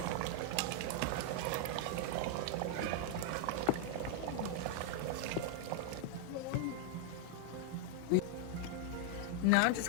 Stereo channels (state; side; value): different; both; correlation 0.00